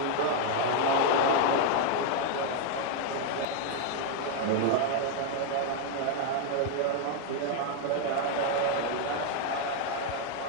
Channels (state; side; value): different; both; correlation 0.00